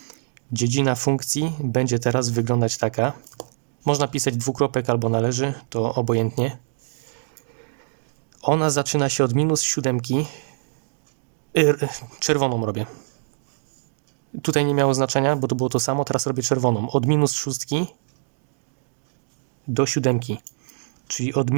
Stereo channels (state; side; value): silent; left; digital silence